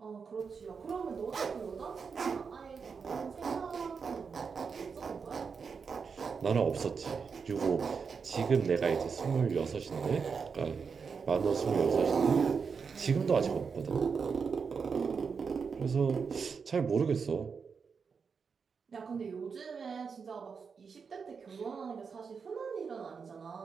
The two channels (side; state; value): left; quieter; 5.7 dB